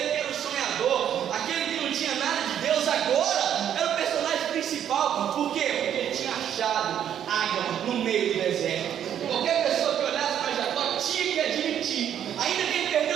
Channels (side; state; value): left; quieter; 9.7 dB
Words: que era o sonhador, aquele que não tinha nada de Deus, agora era o personagem principal. Por quê? Porque ele tinha achado água no meio do deserto. Qualquer pessoa que olhasse para Jacó tinha que admitir, ainda que ele